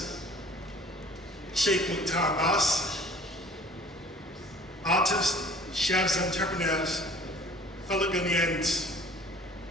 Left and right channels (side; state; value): both; normal; correlation 0.50